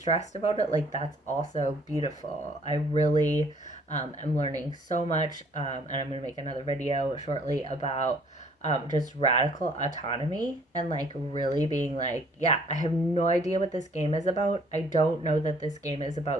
about it, like that's also beautiful. I really am learning so much, and I'm going to make another video shortly about just radical autonomy, and like really being like, yeah, I have no idea what this game is about. I don't know that this game is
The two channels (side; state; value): both; normal; correlation 0.59